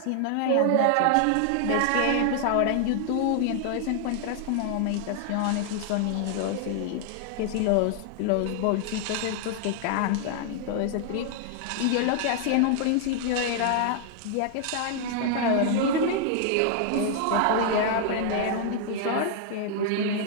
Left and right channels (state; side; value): different; both; correlation 0.00